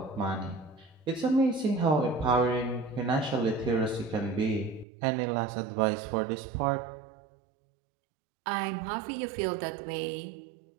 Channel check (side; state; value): left; drops out; at 4.9 s